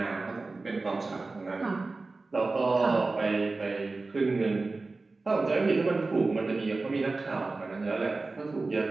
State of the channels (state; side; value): quieter; left; 3.6 dB